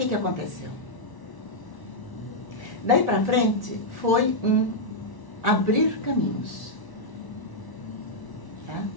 aconteceu? Daí para frente foi um abrir caminhos. Tá?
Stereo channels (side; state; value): right; late; 1.0 ms